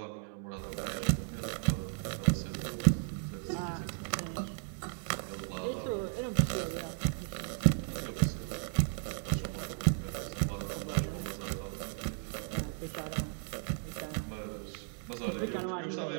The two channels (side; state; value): left; silent; 54 dB below the other